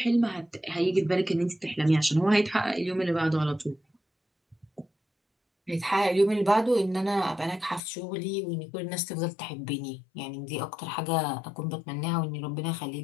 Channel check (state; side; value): drops out; right; at 7.8 s